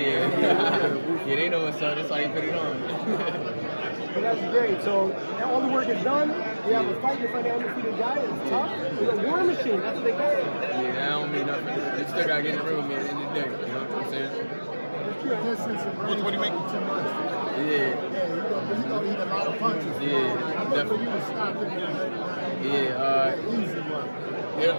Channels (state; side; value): inverted; both; correlation -1.00